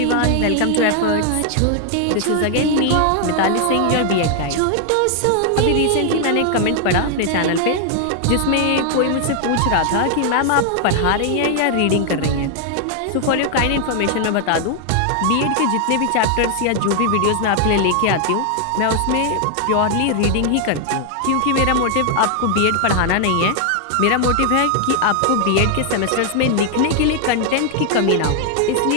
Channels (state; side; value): different; both; correlation 0.00